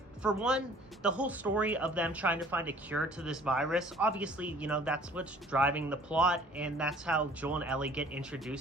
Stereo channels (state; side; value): normal; both; correlation 0.52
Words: For one, the whole story of them trying to find a cure to this virus, obviously, that's what's driving the plot, and that's how Joel and Ellie get